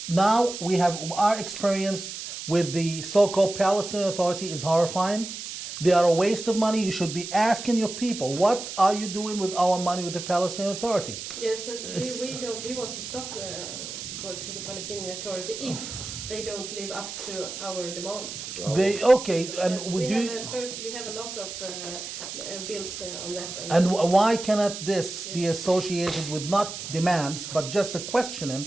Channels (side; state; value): right; noise; hiss, 8 dB below the sound